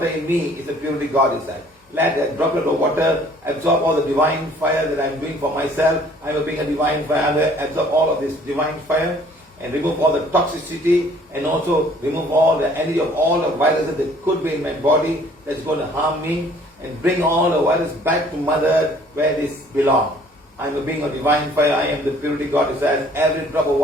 in me is a purity God desires. Let that droplet of water absorb all the divine fire that I'm doing for myself. I'm being a divine fire. I'm going to absorb all of this divine fire and remove all the toxicity and also remove all the energy of all the viruses that could be in my body that's going to harm me and bring all the virus back to Mother Earth where this belongs. I am a being of divine fire. I am the purity God desires. Every drop of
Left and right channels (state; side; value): normal; both; correlation 0.56